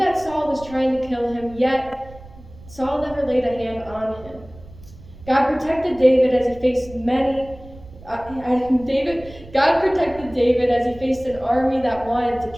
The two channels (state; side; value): noise; right; rumble, 19 dB below the sound